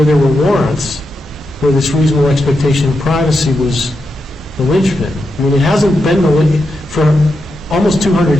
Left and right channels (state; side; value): normal; both; correlation 0.86